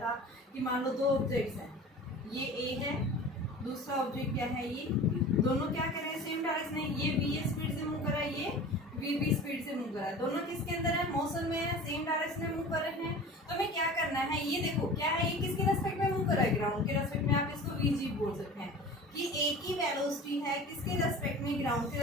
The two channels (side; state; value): both; normal; correlation 0.39